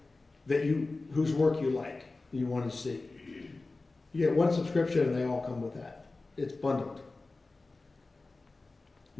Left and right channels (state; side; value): quieter; right; 3.4 dB